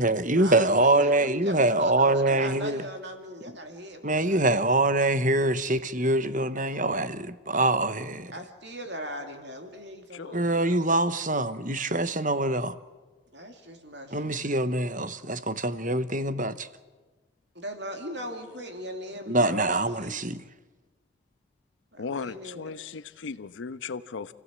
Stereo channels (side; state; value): both; normal; correlation 0.02